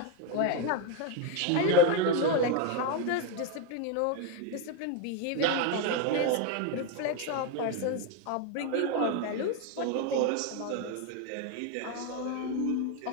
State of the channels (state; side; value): different; both; correlation 0.02